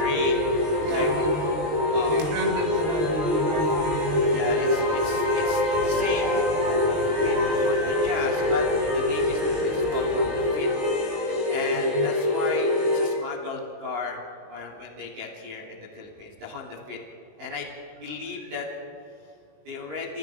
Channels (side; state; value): left; late; 19 ms